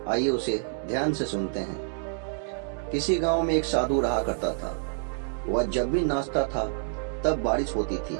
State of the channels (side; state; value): left; silent; digital silence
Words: आइए उसे ध्यान से सुनते हैं। किसी गांव में एक साधु रहा करता था। वह जब भी नाचता था तब बारिश होती थी,